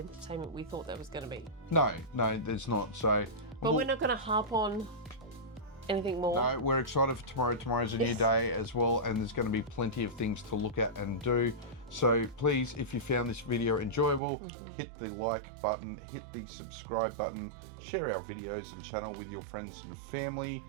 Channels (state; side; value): drops out; left; at 14.2 s